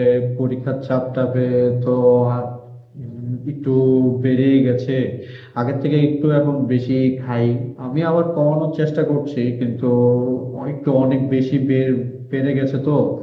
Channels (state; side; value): identical; both; correlation 1.00